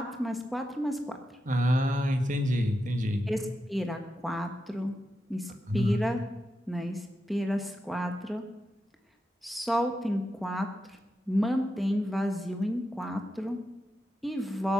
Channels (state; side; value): normal; both; correlation 0.88